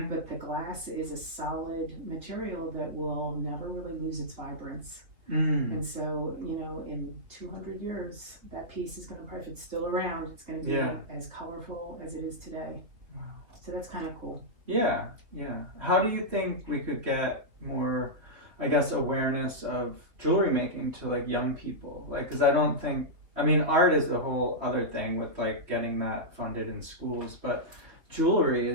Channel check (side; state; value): left; late; 3.5 ms